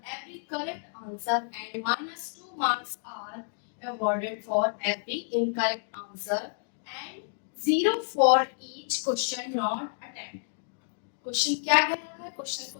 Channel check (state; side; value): silent; right; digital silence